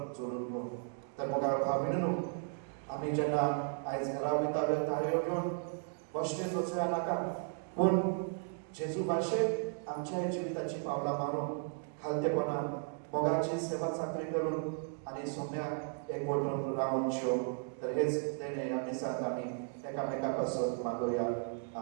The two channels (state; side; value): silent; left; 54 dB below the other